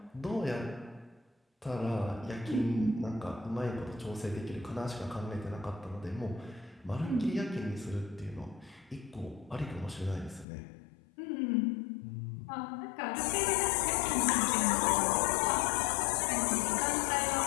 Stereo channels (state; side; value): drops out; right; at 10.5 s